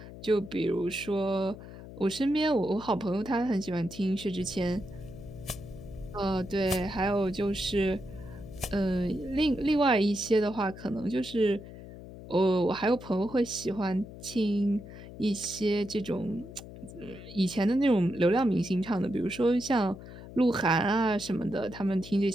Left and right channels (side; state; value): left; noise; hum, 14 dB below the sound